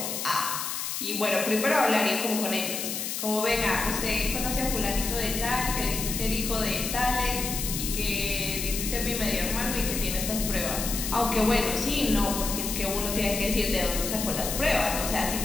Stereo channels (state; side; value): noise; left; hiss, 3 dB below the sound